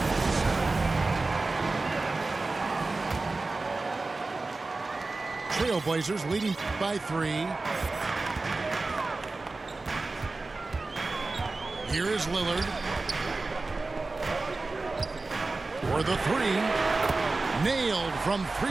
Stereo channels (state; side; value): quieter; left; 3.5 dB